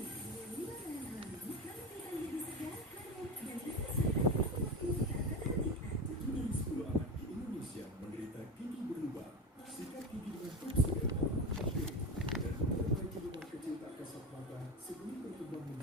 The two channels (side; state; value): both; normal; correlation 0.23